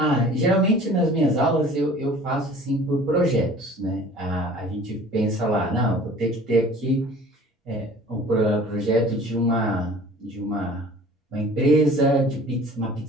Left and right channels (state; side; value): normal; both; correlation 0.47